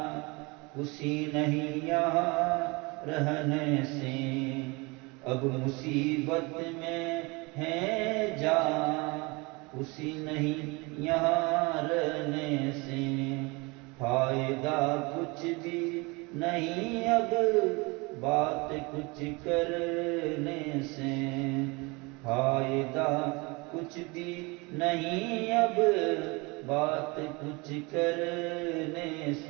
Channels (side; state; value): left; quieter; 26.7 dB